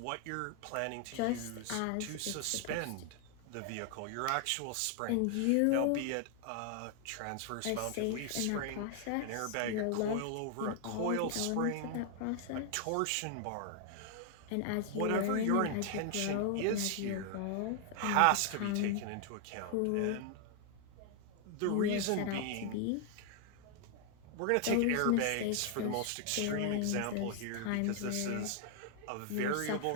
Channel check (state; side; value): different; both; correlation 0.00